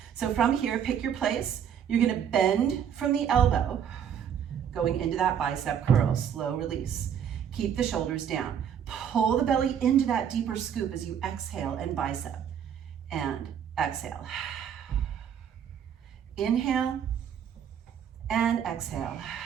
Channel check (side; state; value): left; quieter; 8.6 dB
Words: So from here, pick your place. You're gonna bend from the elbow, going into that bicep curl, slow release. Keep the shoulders down. Pull the belly into that deeper scoop as you exhale and bicep. And exhale. Inhale and exhale.